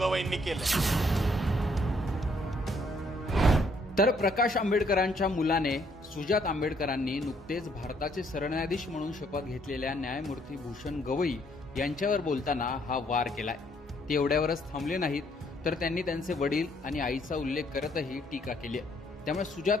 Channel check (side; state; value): both; normal; correlation 0.68